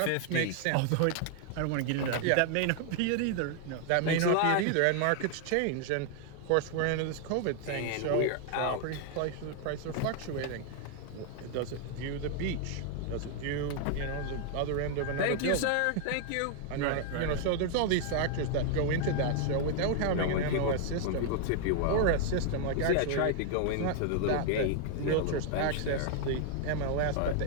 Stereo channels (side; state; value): both; different; correlation 0.00